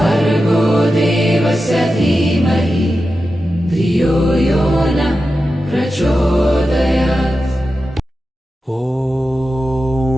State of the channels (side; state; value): both; normal; correlation 0.91